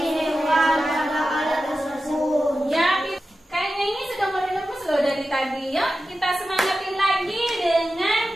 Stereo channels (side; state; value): both; normal; correlation 0.93